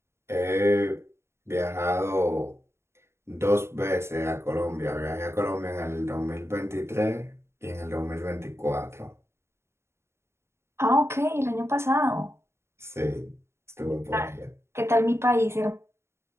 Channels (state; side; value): late; left; 0.13 ms